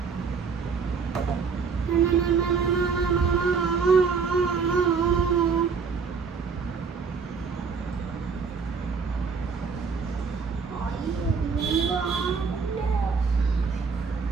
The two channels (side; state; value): left; quieter; 5.4 dB